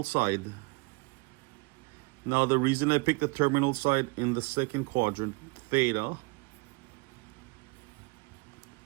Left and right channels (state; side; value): quieter; left; 28.5 dB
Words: side. Now, the reason I picked the terminal side in the second quadrant, theta,